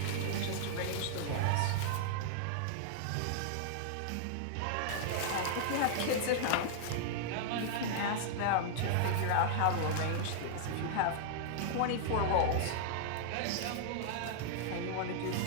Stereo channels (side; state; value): both; different; correlation -0.01